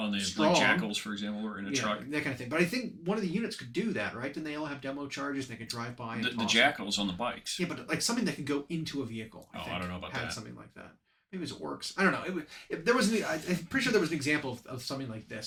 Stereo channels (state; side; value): identical; both; correlation 1.00